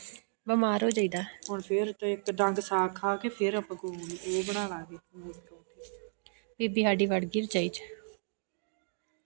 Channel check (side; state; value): left; silent; digital silence